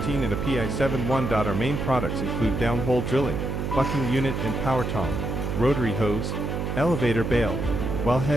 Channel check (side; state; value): right; noise; hum, 2 dB below the sound